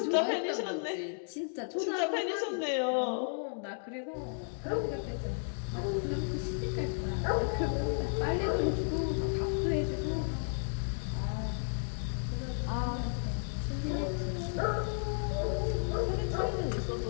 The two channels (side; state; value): right; silent; digital silence